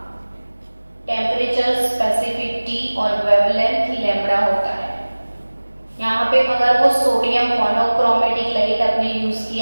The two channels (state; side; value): inverted; both; correlation -1.00